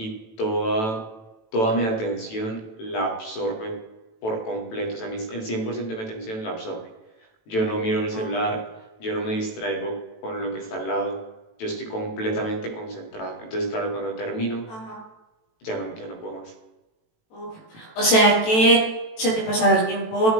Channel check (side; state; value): right; late; 18 ms